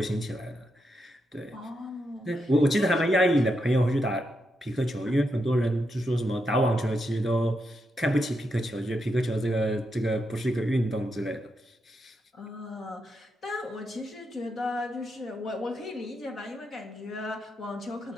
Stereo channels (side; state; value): both; normal; correlation 0.83